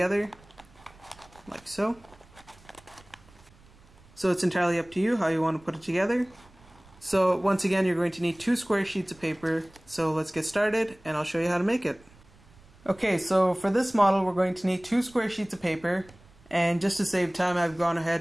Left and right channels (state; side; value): noise; right; rumble, 26 dB below the sound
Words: like so. So it's entirely up to you how you want to put it together. So once again, you're going to need 2 square sheets of paper. So let's get started and I'll show you how to make it. Okay, so for this model we're going to need 2 square sheets of paper, and just to save time I've gone ahead